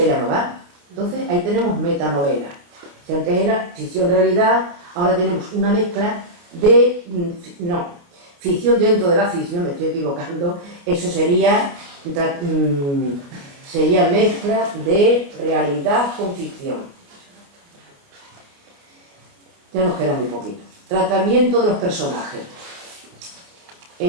ya no va. Entonces ahí tenemos metanovela. Si antes era ficción-realidad, ahora tenemos una mezcla de... ficción dentro de la ficción, me estoy equivocando, eso sería mezcla de realidad con ficción. Ya nos queda muy poquito. Tratamiento de los personajes.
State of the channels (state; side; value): late; left; 28 ms